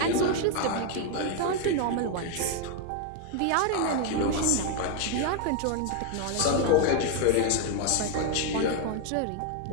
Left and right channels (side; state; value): both; different; correlation 0.01